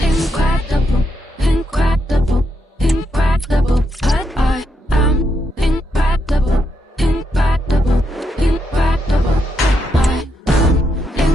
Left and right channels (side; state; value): both; normal; correlation 0.81